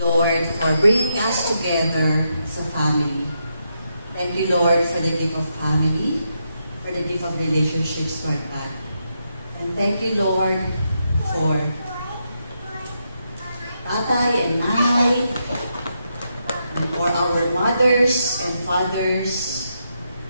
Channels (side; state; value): both; inverted; correlation -0.82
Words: for bringing us together as a family. Thank you, Lord, for the gift of family, for the gift of relationships, Lord God. And thank you, Lord, for tatay and nanay, and for our mothers and fathers